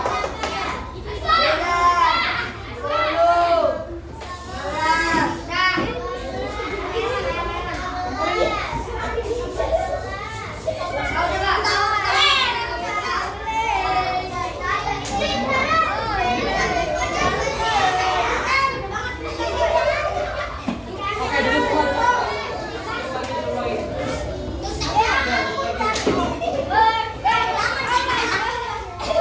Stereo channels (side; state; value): both; identical; correlation 1.00